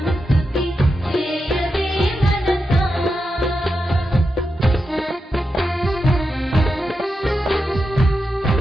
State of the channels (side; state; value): both; normal; correlation 0.87